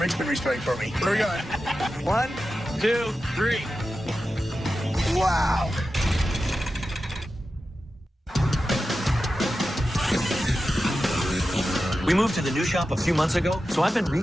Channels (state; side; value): normal; both; correlation 0.92